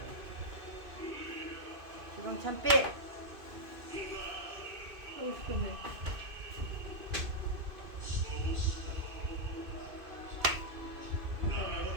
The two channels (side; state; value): left; late; 2.6 ms